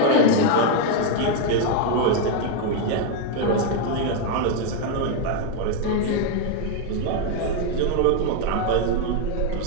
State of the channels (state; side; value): different; both; correlation 0.01